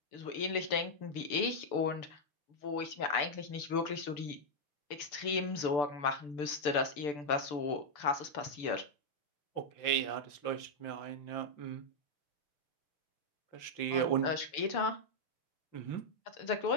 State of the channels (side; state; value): right; late; 6.8 ms